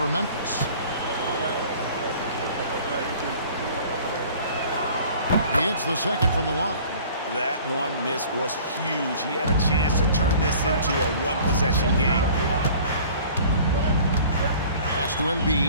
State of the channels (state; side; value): inverted; both; correlation -0.48